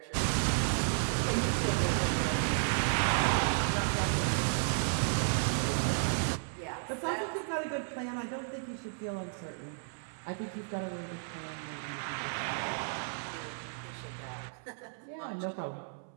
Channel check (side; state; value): left; silent; 56 dB below the other